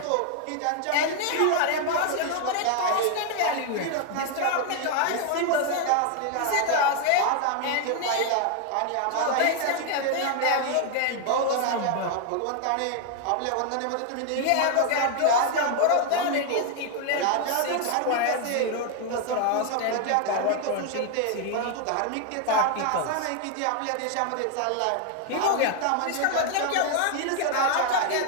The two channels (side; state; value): both; different; correlation 0.01